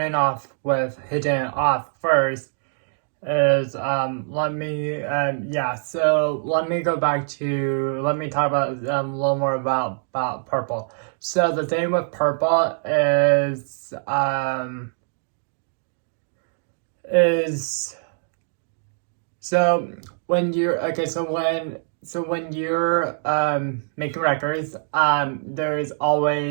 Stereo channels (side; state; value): left; silent; digital silence